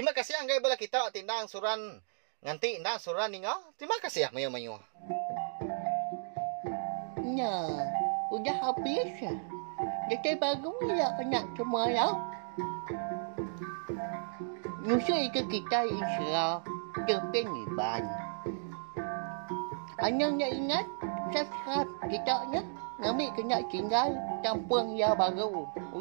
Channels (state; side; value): silent; left; digital silence